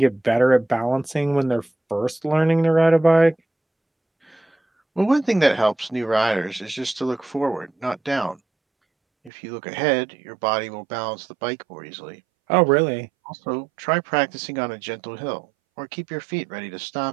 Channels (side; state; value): left; drops out; at 9.3 s